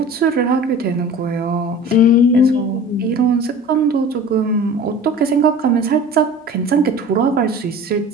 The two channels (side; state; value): both; normal; correlation 0.40